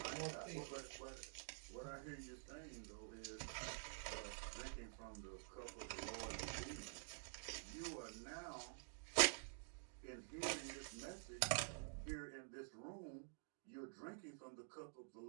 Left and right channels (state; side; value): silent; left; digital silence